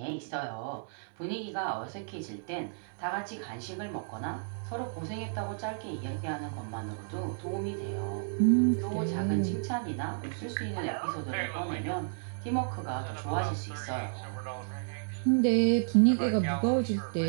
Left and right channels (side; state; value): left; silent; digital silence